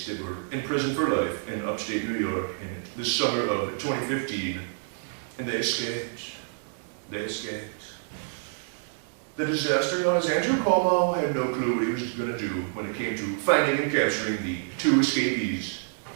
that were in prison for life in upstate New York in the summer of 2015, and they escaped. They escaped. The disaster known as Andrew Cuomo had no clue what he was going to do when it came to finding and capturing the 2 escapees.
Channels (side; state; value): left; silent; digital silence